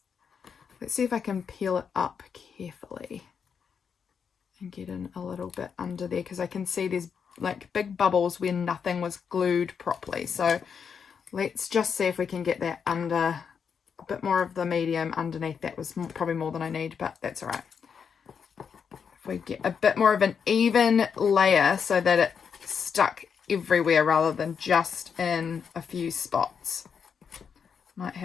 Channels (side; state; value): right; quieter; 6.7 dB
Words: let's see if I can peel it up carefully and get in a little bit under there, because I can see there's like big bubbles where nothing was glued properly. So let's just see if we can get that under, a bit more of the medium underneath. That was probably more than I need, but that's all right. If we get a bit more of an even layer so that it stuck everywhere rather than just in a few spots. Might